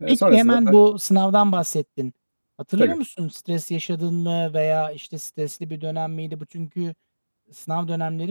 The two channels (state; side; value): inverted; both; correlation -1.00